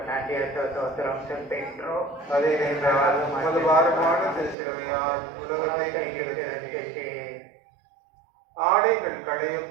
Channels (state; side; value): drops out; left; at 4.5 s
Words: நன்றி ஸ்தோத்திரம் செலுத்துகின்றோம். அதேனென்றால் உமது பாரமான திருச்சிலுவையால் உலகத்தை நீக்கி ரட்சித்தீர். ஆடைகள்